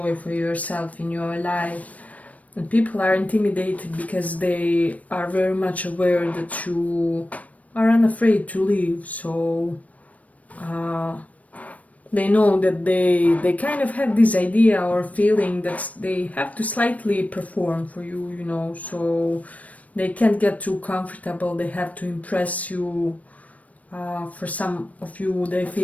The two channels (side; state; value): right; late; 0.069 ms